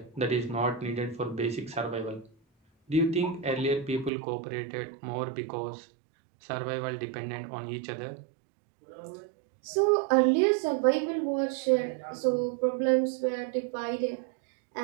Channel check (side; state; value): left; drops out; at 4.1 s